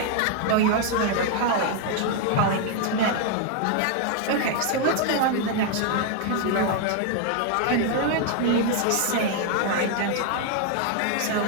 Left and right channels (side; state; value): both; different; correlation 0.00